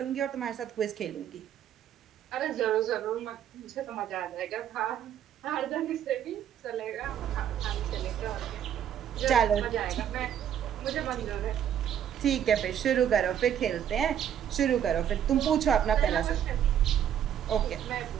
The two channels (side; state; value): left; quieter; 9.7 dB